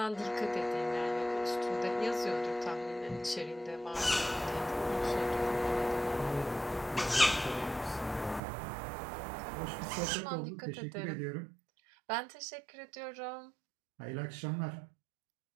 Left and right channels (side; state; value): left; drops out; at 8.4 s